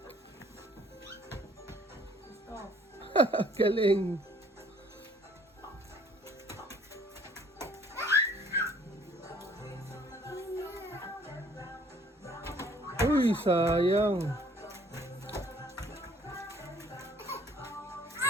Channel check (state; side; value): normal; both; correlation 0.58